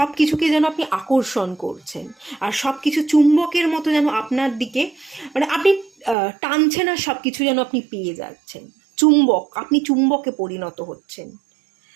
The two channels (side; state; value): left; drops out; at 6.2 s